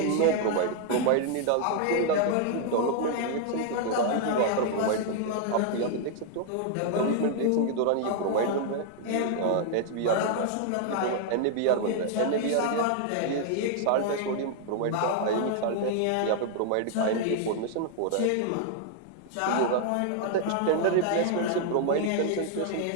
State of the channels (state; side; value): different; both; correlation 0.00